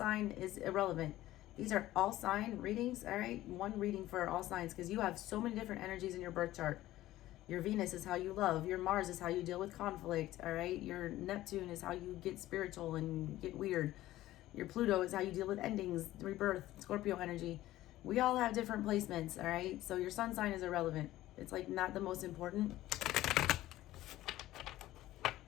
is irrelevant. These are all sign readings, all right? One reading for all signs because you have so many different energies in your birth chart. Your Venus is how you love. Your Mars is how you deal with conflict, all right? Your Neptune is how you get spiritual and get weird. Your Pluto is how you deal with endings, rebirth, Scorpio energy. We all have different placements, all right? So your sun sign is irrelevant. It's like not the most important.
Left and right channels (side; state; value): right; quieter; 15.4 dB